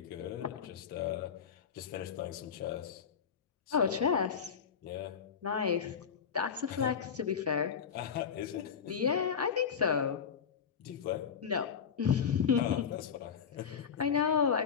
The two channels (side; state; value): right; quieter; 7.0 dB